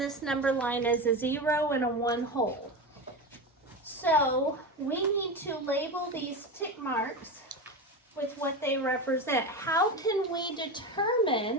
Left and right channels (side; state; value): both; normal; correlation 0.21